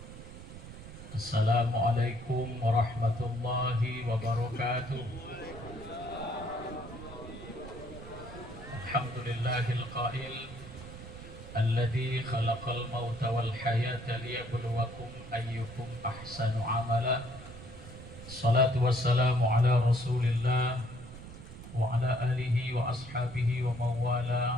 Assalamualaikum warahmatullahi wabarakatuh. Alhamdulillahil qail alladzi khalaqal mauta wal hayata liyabluwakum ayyukum ahsanu amala. Salatu wassalamu ala Rasulillah wa ala alihi wa ashabihi wa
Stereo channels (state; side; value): noise; right; rumble, 14 dB below the sound